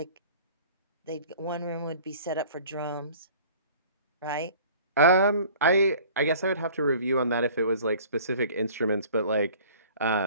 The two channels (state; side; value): inverted; both; correlation -0.48